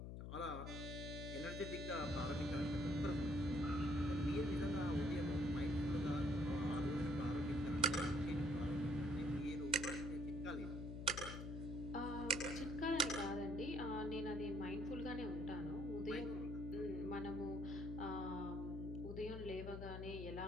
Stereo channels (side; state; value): left; noise; hum, 6 dB below the sound